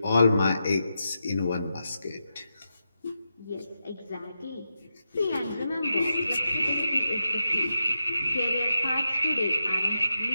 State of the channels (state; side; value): inverted; both; correlation -0.88